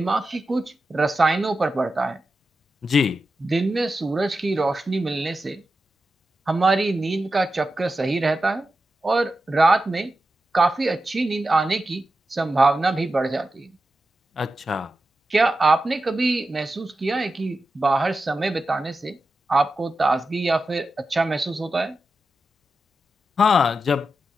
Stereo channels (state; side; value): normal; both; correlation 0.91